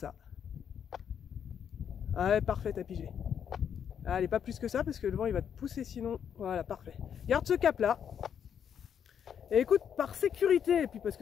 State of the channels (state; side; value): quieter; right; 8.3 dB